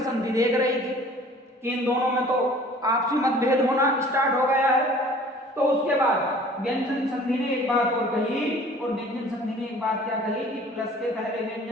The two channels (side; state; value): both; normal; correlation 0.49